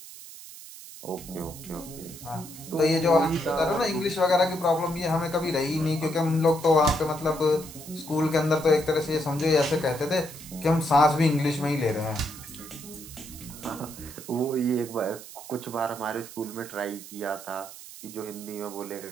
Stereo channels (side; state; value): right; noise; hiss, 15 dB below the sound